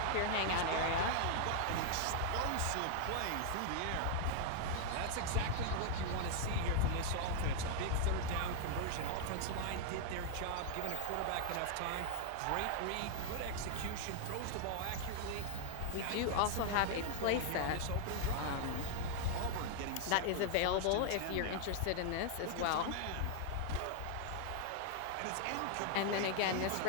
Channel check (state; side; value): different; both; correlation 0.00